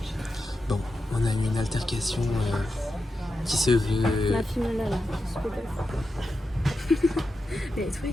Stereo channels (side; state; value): both; normal; correlation 0.89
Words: Bon, on a eu une altercation qui se veut. La finale là, je suis Mais toi,